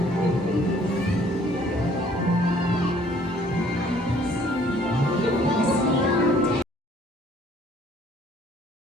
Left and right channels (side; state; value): both; normal; correlation 0.59